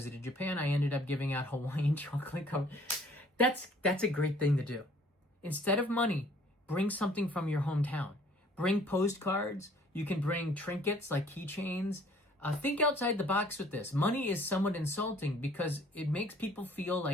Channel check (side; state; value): both; normal; correlation 0.57